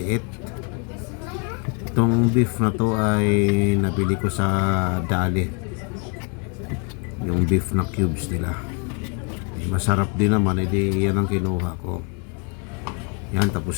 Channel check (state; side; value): quieter; right; 35.4 dB